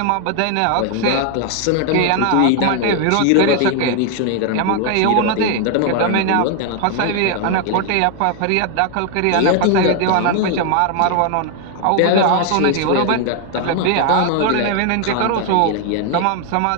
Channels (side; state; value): both; different; correlation 0.00